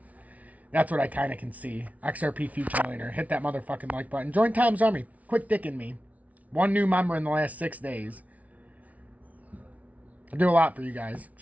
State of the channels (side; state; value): left; late; 0.070 ms